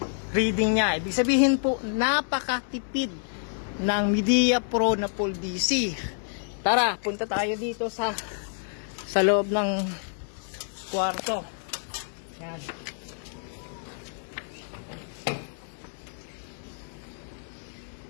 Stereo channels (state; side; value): silent; right; digital silence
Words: reading niya. Ibig sabihin po, napakatipid ng Midea Pro na full DC. Tara, punta tayo dito sa loob ng kwarto. Yan.